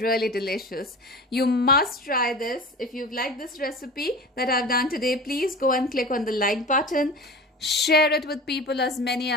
delicious. You must try this. If you've liked this recipe that I've done today, please go and click on the like button. Share it with people, as many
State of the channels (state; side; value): normal; both; correlation 0.34